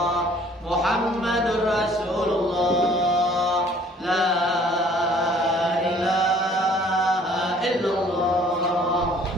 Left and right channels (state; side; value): normal; both; correlation 0.56